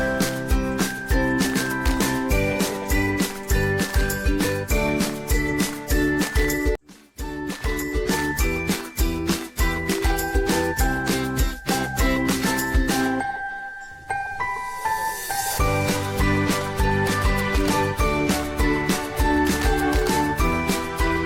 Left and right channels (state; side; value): identical; both; correlation 1.00